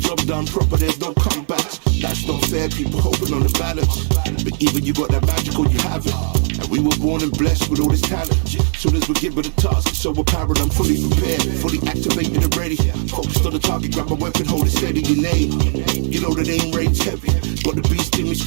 done proper, there's no comebacks. That's not fair, people hoping on the balance. But even you got that magical, you have it. And we were born and blessed with all this talent. Soon as we give it a task, it's so apparent, I'm fully prepared, fully activated and ready. Focused on the target, grab my weapon, hold it steady, your name. You know the name rates heavy. Got the beast in me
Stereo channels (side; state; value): left; silent; 58 dB below the other